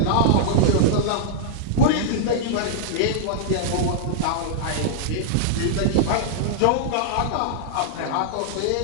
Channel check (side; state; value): both; different; correlation -0.01